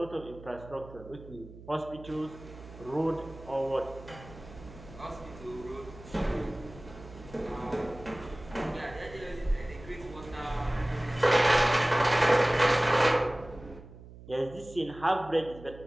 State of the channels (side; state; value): right; noise; hum, 17 dB below the sound